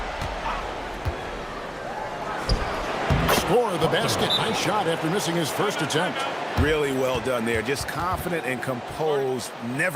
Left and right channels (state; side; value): identical; both; correlation 1.00